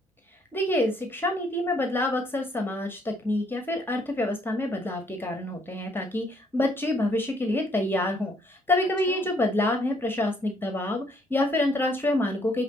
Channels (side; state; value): both; normal; correlation 0.67